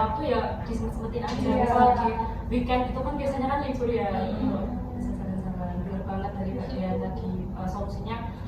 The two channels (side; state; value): both; identical; correlation 1.00